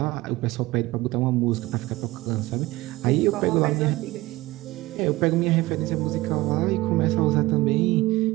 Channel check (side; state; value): left; quieter; 19.1 dB